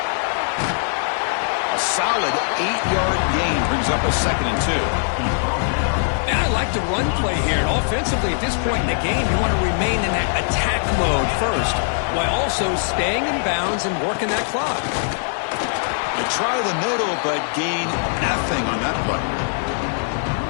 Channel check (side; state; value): right; silent; digital silence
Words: A solid 8-yard gain brings up a 2nd and 2. And I like the run play here. And offensively, at this point in the game, you want to remain in that attack mode first, while also staying in bounds and working that clock. They try the middle, but gain nothing on that play.